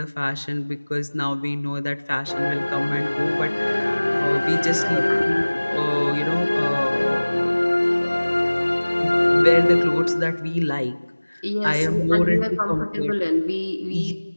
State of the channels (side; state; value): both; inverted; correlation -1.00